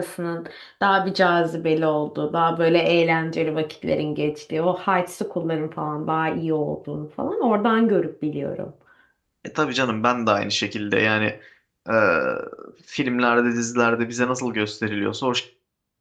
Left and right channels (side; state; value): both; identical; correlation 1.00